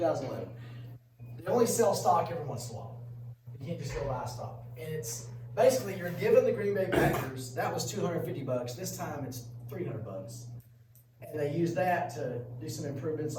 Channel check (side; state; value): both; identical; correlation 1.00